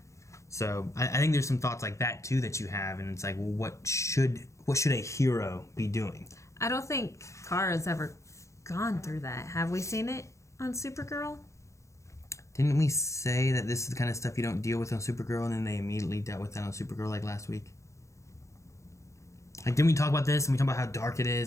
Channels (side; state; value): right; late; 0.15 ms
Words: So I think there's some thoughts like that too that you have, and it's like, well, what should a hero be doing? I don't think Kara's ever gone through that. Have we seen it on Supergirl? Didn't we say that this is the kind of stuff you don't deal with on Supergirl, and then they immediately dealt with that on Supergirl like last week? Like, didn't we talk about this, and we talked about how dark it